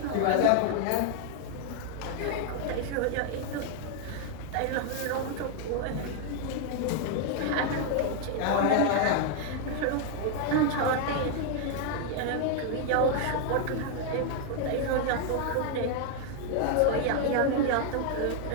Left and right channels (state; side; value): different; both; correlation 0.00